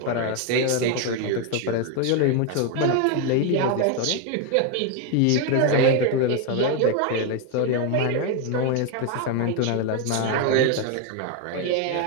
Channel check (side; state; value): both; different; correlation 0.01